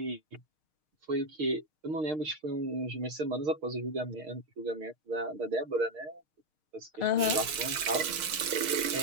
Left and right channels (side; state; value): left; late; 6.5 ms